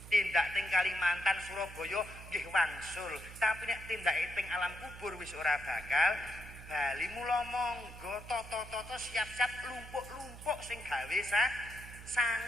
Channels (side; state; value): right; noise; hum, 14 dB below the sound